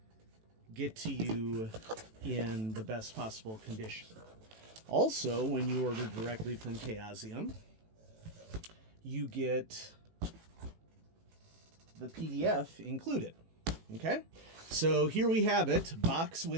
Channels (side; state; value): left; late; 18 ms